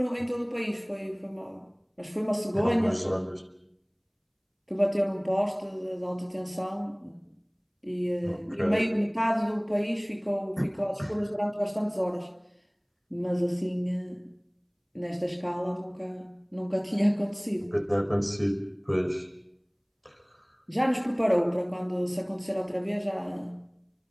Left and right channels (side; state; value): both; identical; correlation 1.00